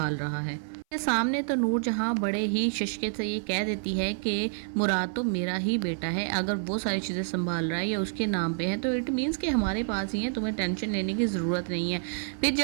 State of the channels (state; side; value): silent; left; 57 dB below the other